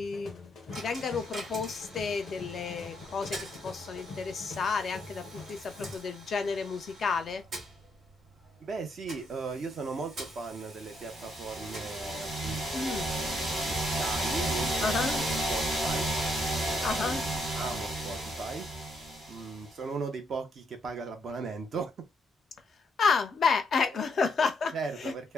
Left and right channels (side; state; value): both; normal; correlation 0.75